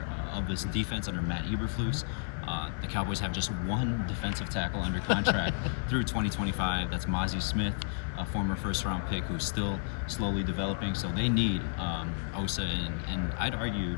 of this defense under Matt Eberflus. The Cowboys have just one defensive tackle under contract through 2025. That's Mazi Smith, a former first-round pick who's still slowly developing. So they need Osa, and I'd argue,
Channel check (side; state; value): right; silent; 57 dB below the other